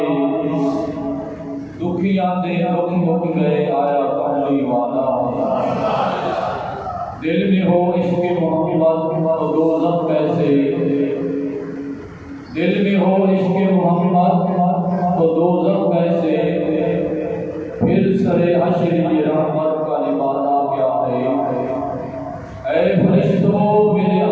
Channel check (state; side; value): identical; both; correlation 1.00